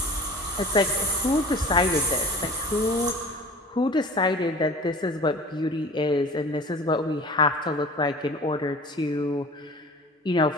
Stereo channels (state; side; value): normal; both; correlation 0.41